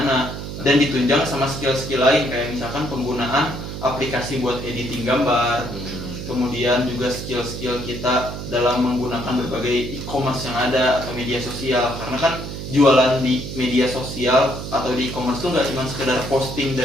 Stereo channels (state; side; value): noise; right; hum, 8 dB below the sound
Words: dan ditunjang sama skill-skill lain kayak misalkan penggunaan aplikasi buat editing gambar. Kemudian juga skill-skill kita dalam menggunakan berbagai e-commerce yang ada atau media sosial, karena kan jualan di media sosial atau di e-commerce itu nggak cuma sekedar posting